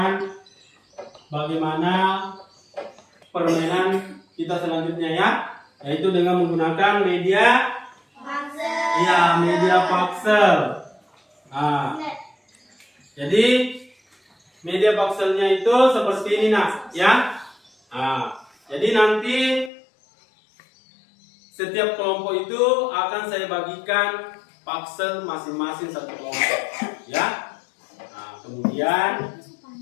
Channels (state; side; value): drops out; right; at 19.7 s